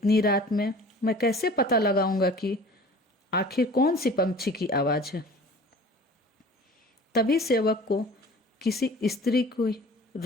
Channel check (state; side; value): normal; both; correlation 0.44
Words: रात में मैं कैसे पता लगाऊंगा कि आखिर कौन सी पंछी की आवाज़ है। तभी सेवक को किसी स्त्री को